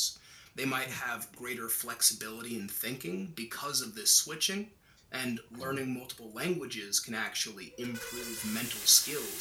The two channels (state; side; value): identical; both; correlation 1.00